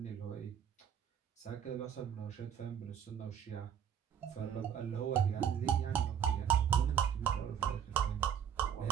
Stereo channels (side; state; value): left; quieter; 8.6 dB